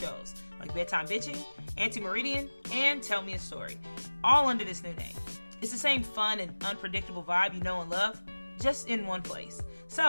shows, like Bedtime Bitchin, Anti-Meridian, and Tell Me a Story, all under this new name. It's the same fun and unpredictable vibe you know and love, just in one place.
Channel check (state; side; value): inverted; both; correlation -1.00